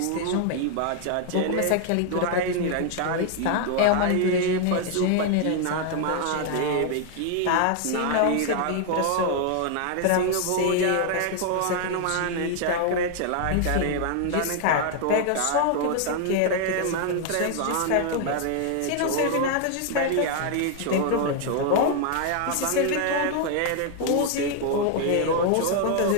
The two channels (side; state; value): both; different; correlation 0.00